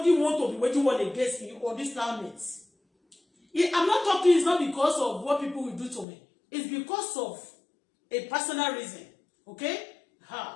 want to be waging war against me on this planet, I'm not talking, it's not because of what people will do to me. It's because of a personal reason. Okay?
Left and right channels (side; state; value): right; drops out; at 6.1 s